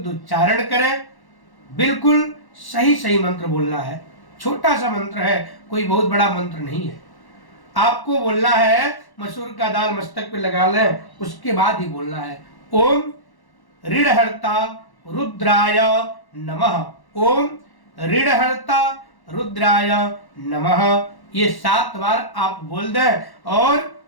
उच्चारण करें। बिल्कुल सही सही मंत्र बोलना है। छोटा सा मंत्र है, कोई बहुत बड़ा मंत्र नहीं है। आपको बोलना है, मसूर का दाल मस्तक पे लगा लें, उसके बाद ही बोलना है, ओम ऋणहर्ता रुद्राय नमः। ओम ऋणहर्ता रुद्राय नमः। ये 7 बार आप बोल दें और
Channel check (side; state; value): right; late; 1.1 ms